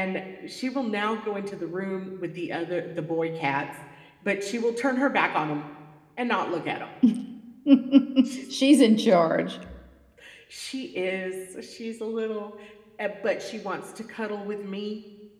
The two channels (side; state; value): both; identical; correlation 1.00